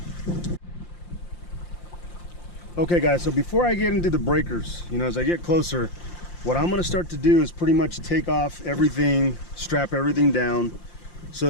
Okay guys, so before I get into the breakers, you know, as I get closer, what I'm gonna start to do is pretty much take off everything, strap everything down,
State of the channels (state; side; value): late; right; 5.7 ms